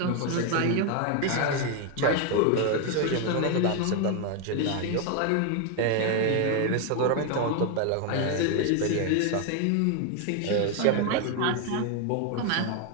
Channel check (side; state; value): both; different; correlation 0.01